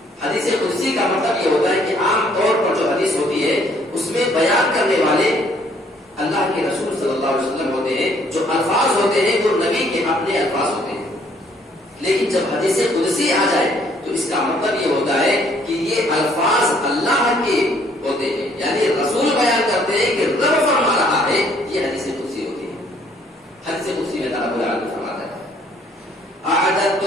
حدیث قدسی کا مطلب یہ ہوتا ہے کہ عام طور پر جو حدیث ہوتی ہے اس میں بیان کرنے والے اللہ کے رسول صلی اللہ علیہ وسلم ہوتے ہیں، جو الفاظ ہوتے ہیں وہ نبی کے اپنے الفاظ ہوتے ہیں۔ لیکن جب حدیث قدسی آ جائے تو اس کا مطلب یہ ہوتا ہے کہ یہ الفاظ اللہ کے ہوتے ہیں، یعنی رسول بیان کرتے ہیں کہ رب فرما رہا ہے، یہ حدیث قدسی ہوتی ہے۔ حدیث قدسی میں اللہ رب العالمین فرماتا ہے اعددت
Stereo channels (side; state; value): both; normal; correlation 0.64